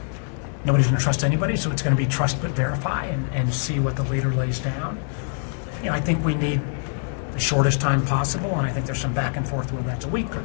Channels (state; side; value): silent; right; 56 dB below the other